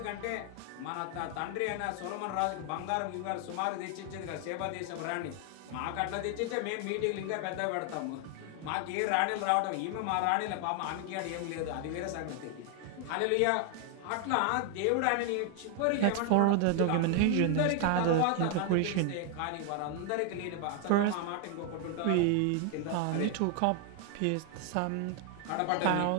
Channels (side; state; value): both; different; correlation 0.00